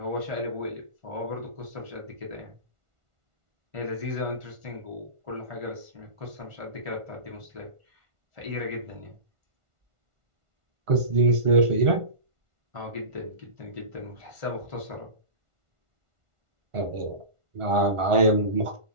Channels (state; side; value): late; left; 1.4 ms